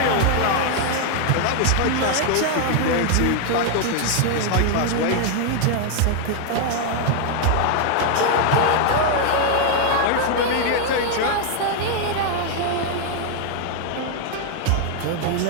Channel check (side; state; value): both; different; correlation 0.00